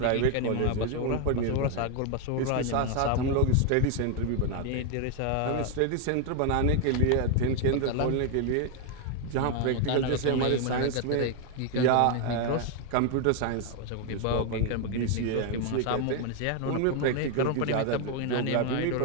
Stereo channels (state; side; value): different; both; correlation 0.01